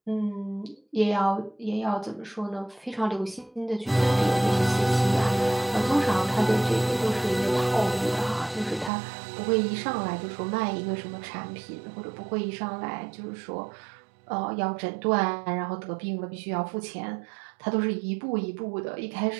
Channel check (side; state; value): left; drops out; at 8.9 s